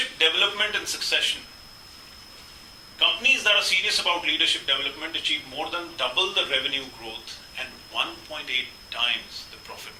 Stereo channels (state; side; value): identical; both; correlation 1.00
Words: development and succession. Companies that are serious about leadership development achieve more than double the revenue growth and 1.8 times the profit